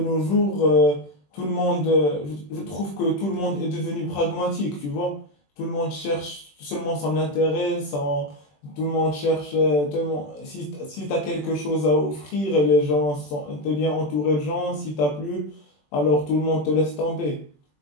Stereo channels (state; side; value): late; right; 21 ms